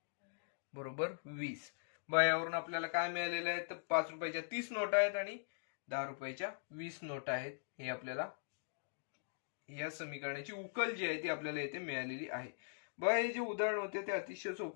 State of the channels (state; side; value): silent; right; digital silence